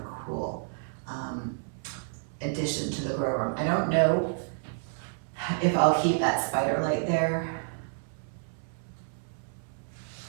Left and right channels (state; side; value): silent; left; 58 dB below the other